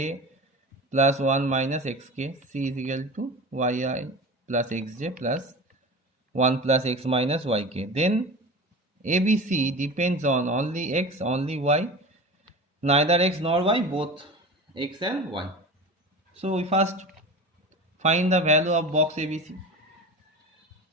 plus 1 minus xk, C is equal to yi plus xj plus 1 plus x minus yk. Then ABC depends on only x, only y, neither x nor y, both x and y. So we first find the value of box ABC.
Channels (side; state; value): both; normal; correlation 0.32